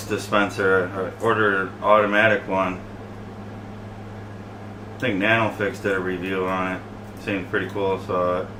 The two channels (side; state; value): both; identical; correlation 1.00